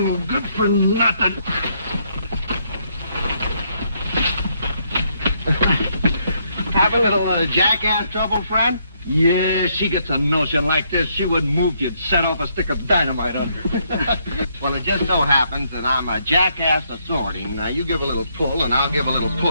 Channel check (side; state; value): both; inverted; correlation -0.73